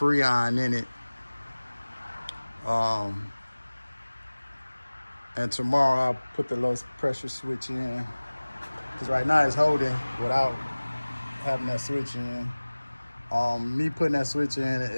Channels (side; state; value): both; inverted; correlation -1.00